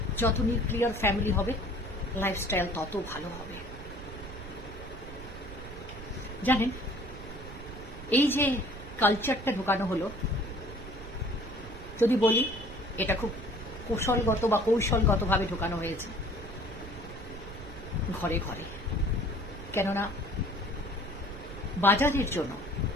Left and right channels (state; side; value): noise; right; rumble, 13 dB below the sound